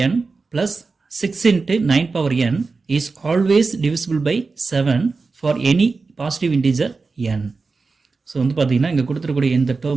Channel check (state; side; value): quieter; left; 4.2 dB